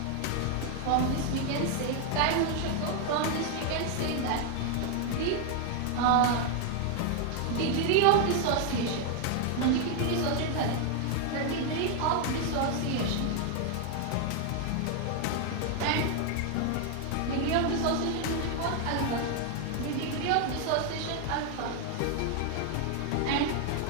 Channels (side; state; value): both; different; correlation 0.00